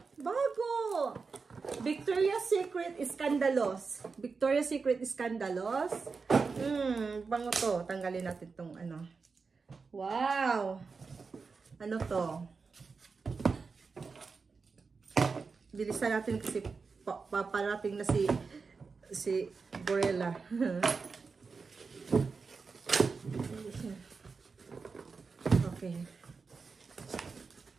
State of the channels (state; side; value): quieter; left; 4.8 dB